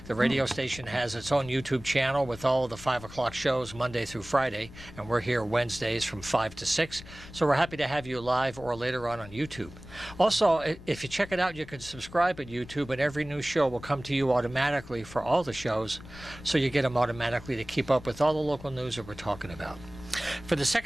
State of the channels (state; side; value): noise; left; rumble, 17 dB below the sound